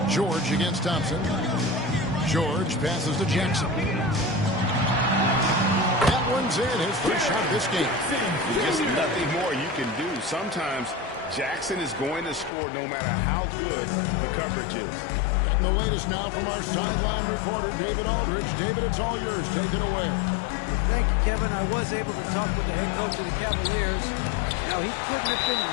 George against Thompson. George passes to Jackson. That one's in, his first shot of this game. Just nothing more you can do. Sometimes Jackson is going to score no matter how good the coverage is. Getting the latest now from our sideline reporter, David Aldridge. David, it's all yours. Take it away. Thank you, Kevin. I was able to talk with the head coach of the Cavaliers. Now, he couldn't have been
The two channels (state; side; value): drops out; right; at 12.5 s